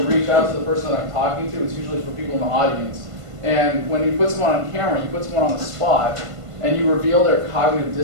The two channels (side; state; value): left; late; 1.5 ms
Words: reach out to the person that I'm talking to, it's usually for people in the audience. And when you put someone on camera, you put someone on the spot, and you reveal their cognitive